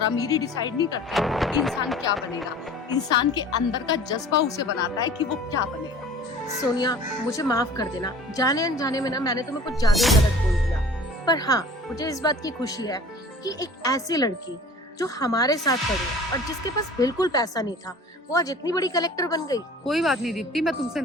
अमीरी डिसाइड नहीं करती कि इंसान क्या बनेगा। इंसान के अंदर का जज्बा उसे बनाता है कि वो क्या बनेगा। सोनिया, मुझे माफ कर देना, जाने अनजाने में ना मैंने तुम्हें कुछ ज्यादा ही गलत बोल दिया। पर हाँ, मुझे इस बात की खुशी है कि एक ऐसी लड़की जो हमारे साथ पढ़ी और जिसके पास बिल्कुल पैसा नहीं था, वो आज इतनी बड़ी कलेक्टर बन गई। कोई बात नहीं दीप्ति, मैं तुमसे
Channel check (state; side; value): normal; both; correlation 0.45